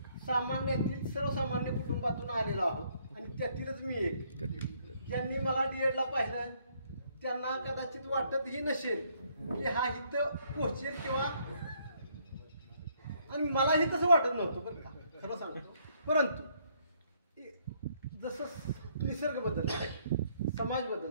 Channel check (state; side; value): inverted; both; correlation -0.68